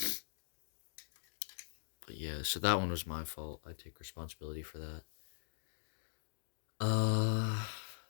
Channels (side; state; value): right; silent; digital silence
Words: But yeah, so that one was my fault. I take responsibility for that.